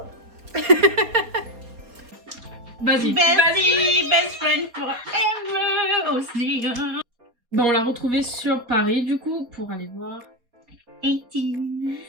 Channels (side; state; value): left; late; 4.2 ms